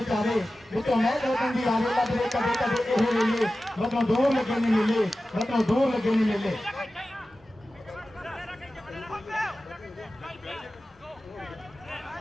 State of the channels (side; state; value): both; normal; correlation 0.95